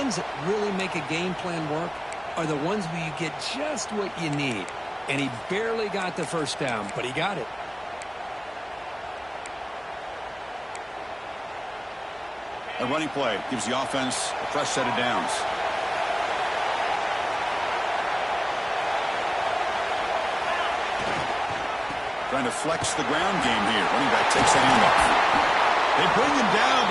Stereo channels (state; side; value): identical; both; correlation 1.00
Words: that really make a game plan work are the ones where you get just what you need. And he barely got the first down, but he got it. A running play gives the offense a fresh set of downs. Trying to flex the ground game here. Running back takes the handoff. They bring him down,